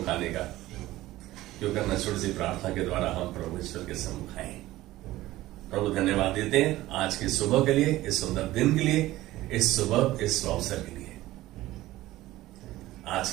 आने का, जो करना छोटी सी प्रार्थना के द्वारा हम प्रभु ईश्वर के सम्मुख आए। प्रभु धन्यवाद देते हैं आज की सुबह के लिए, इस सुंदर दिन के लिए, इस सुबह इस अवसर के लिए। आज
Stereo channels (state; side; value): quieter; left; 16.6 dB